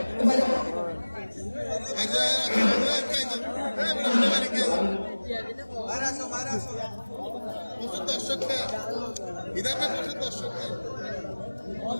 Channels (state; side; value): inverted; both; correlation -1.00